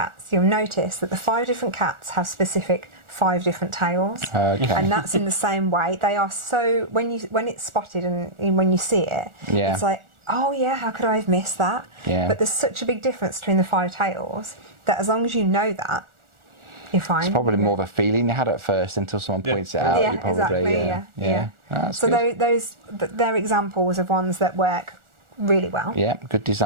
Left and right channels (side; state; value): left; late; 1.4 ms